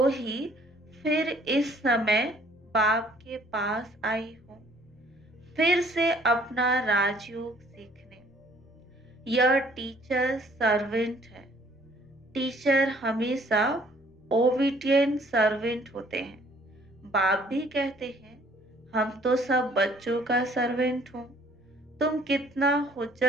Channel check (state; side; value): normal; both; correlation 0.59